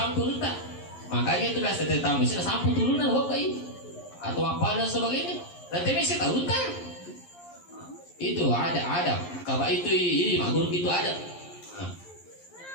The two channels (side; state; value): right; late; 11 ms